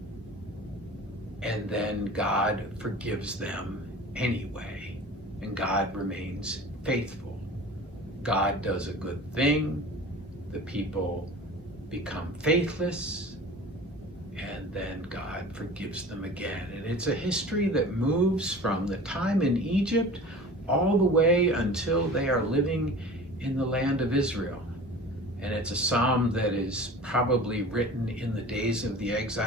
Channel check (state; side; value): normal; both; correlation 0.39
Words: and then God forgives them anyway, and God remains faithful. God does a good thing, the people become faithless, and then God forgives them again. And it's a history that moves from the time in Egypt all the way until they are living in the land of Israel. And it's a psalm that is probably written in the days of the